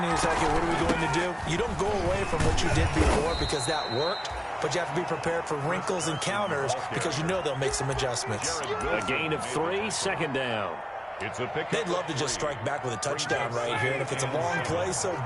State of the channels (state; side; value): identical; both; correlation 1.00